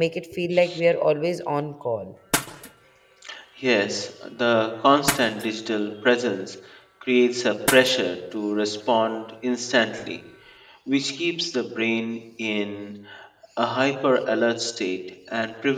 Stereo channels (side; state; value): both; identical; correlation 1.00